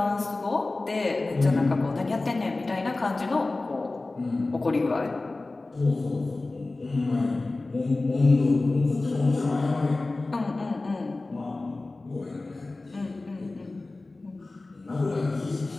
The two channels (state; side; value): quieter; right; 3.2 dB